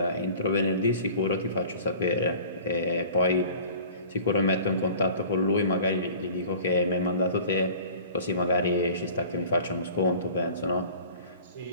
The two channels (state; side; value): inverted; both; correlation -0.44